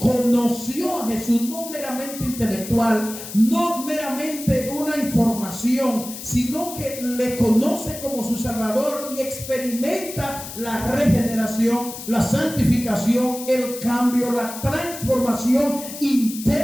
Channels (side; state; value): left; noise; hiss, 11 dB below the sound